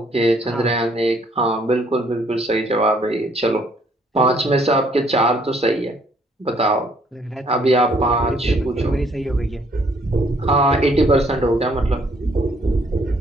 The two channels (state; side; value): normal; both; correlation 0.65